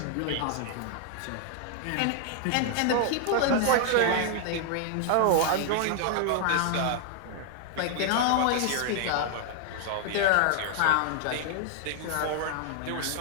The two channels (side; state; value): both; different; correlation 0.00